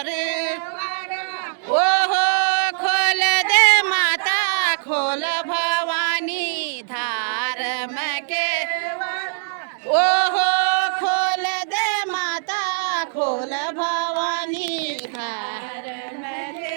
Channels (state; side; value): silent; left; digital silence